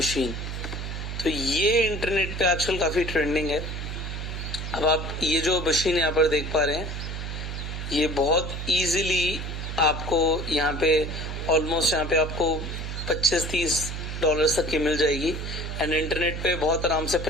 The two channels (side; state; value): right; noise; hum, 5 dB below the sound